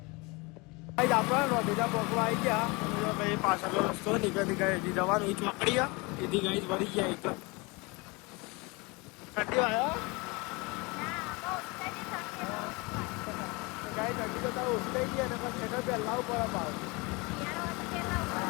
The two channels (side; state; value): right; quieter; 26.8 dB